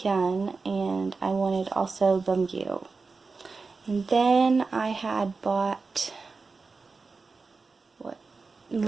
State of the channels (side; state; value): left; quieter; 4.3 dB